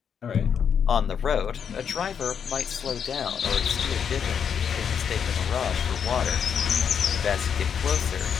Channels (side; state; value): right; quieter; 7.4 dB